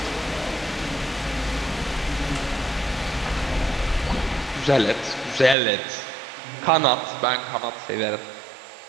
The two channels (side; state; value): left; drops out; at 5.6 s